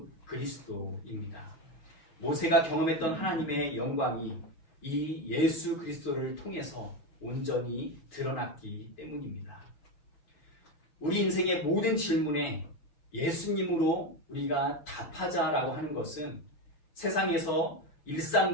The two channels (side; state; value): right; late; 5.9 ms